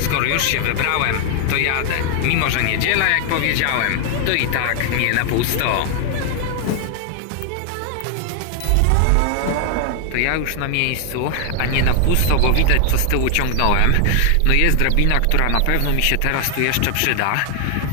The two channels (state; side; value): different; both; correlation 0.00